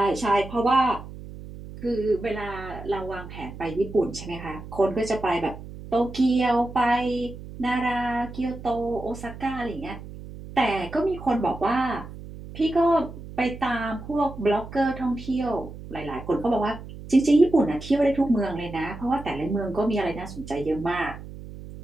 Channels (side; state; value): right; noise; hum, 13 dB below the sound